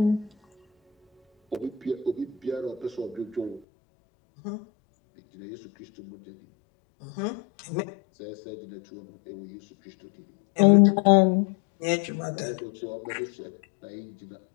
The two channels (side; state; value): right; drops out; at 3.6 s